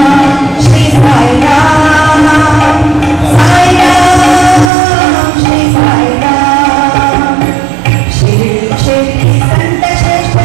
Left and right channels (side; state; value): left; drops out; at 4.7 s